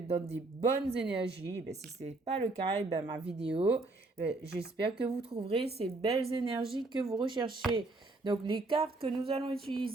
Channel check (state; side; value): quieter; left; 3.2 dB